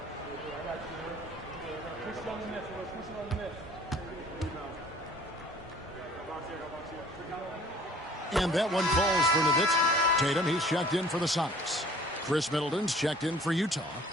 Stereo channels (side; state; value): both; normal; correlation 0.52